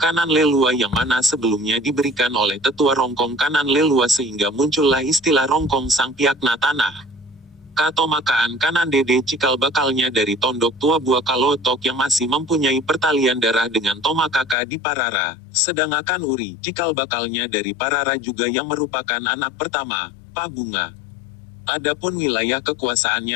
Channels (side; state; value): right; drops out; at 14.6 s